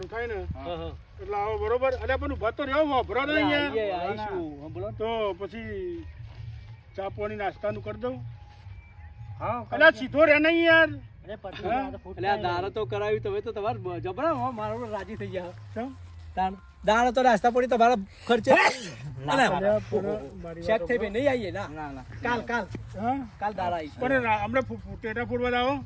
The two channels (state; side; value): identical; both; correlation 1.00